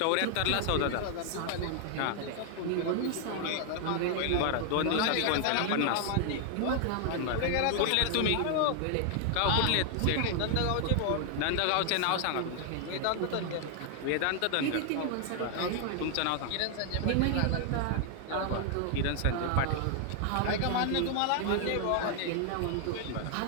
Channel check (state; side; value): different; both; correlation 0.00